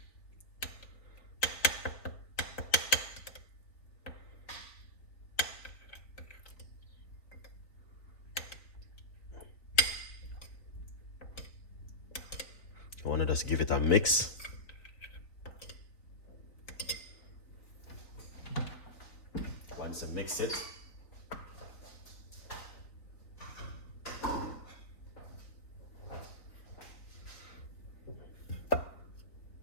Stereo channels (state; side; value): late; right; 4.0 ms